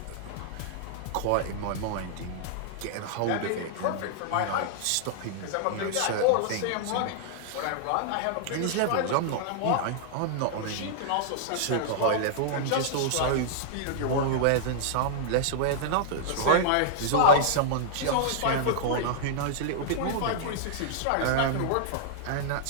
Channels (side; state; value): both; different; correlation -0.01